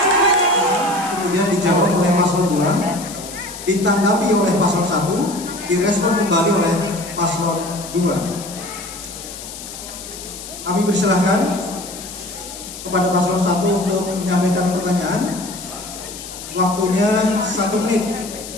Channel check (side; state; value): left; noise; hiss, 12 dB below the sound